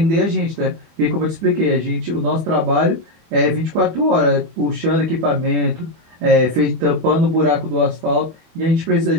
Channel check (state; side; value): late; left; 25 ms